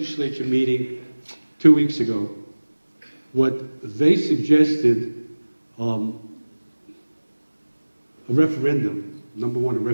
meeting 2 weeks ago, what they suggested, a referendum, number one, a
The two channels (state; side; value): inverted; both; correlation -1.00